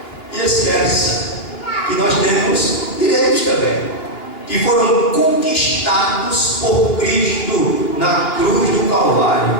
e esquece que nós temos direitos também, que foram conquistados por Cristo na cruz do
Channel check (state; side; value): late; right; 2.9 ms